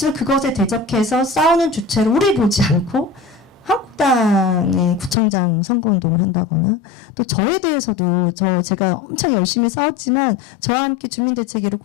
그것에 대적해서 싸우는 주체를 우리 보지 않고 한국당의 구청장 선거운동을 한다거나, 또 저에 대해서도 제가 엄청 열심히 싸웠지만 저와 함께 주민대책위를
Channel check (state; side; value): drops out; right; at 5.2 s